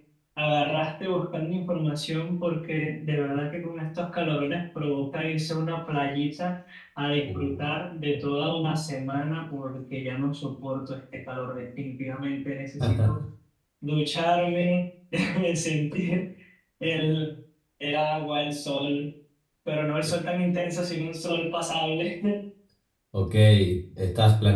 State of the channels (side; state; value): both; identical; correlation 1.00